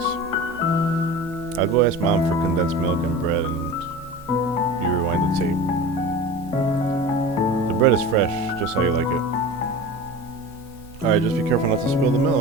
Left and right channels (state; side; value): normal; both; correlation 0.34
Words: I'll go ask Mom for condensed milk and bread and bread is fresh, just how you like it. Alright, just be careful not to spill the